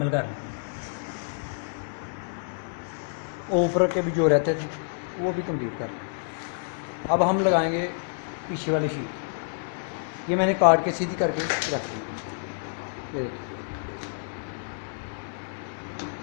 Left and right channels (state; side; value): silent; right; digital silence